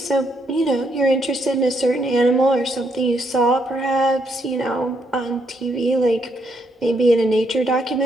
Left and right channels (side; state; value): both; normal; correlation 0.75